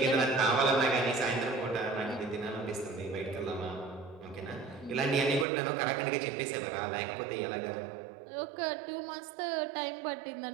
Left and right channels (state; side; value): drops out; left; at 5.5 s